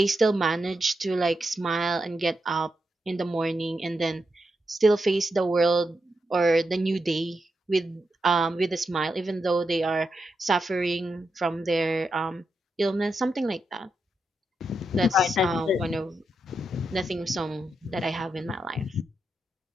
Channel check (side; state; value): both; normal; correlation 0.85